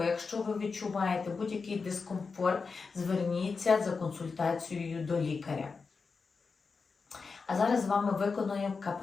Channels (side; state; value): right; quieter; 4.8 dB